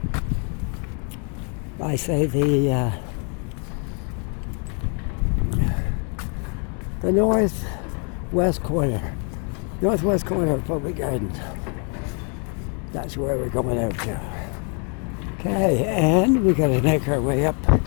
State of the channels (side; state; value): right; quieter; 38.9 dB